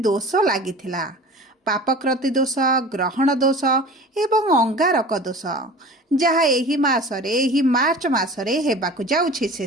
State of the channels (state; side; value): normal; both; correlation 0.39